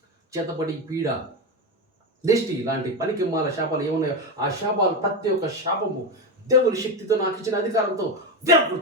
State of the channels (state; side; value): normal; both; correlation 0.14